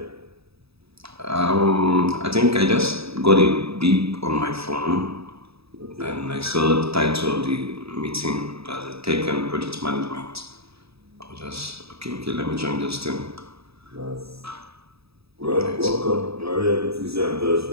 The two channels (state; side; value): late; left; 0.77 ms